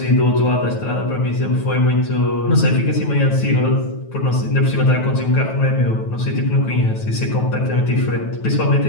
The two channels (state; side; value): late; right; 9.2 ms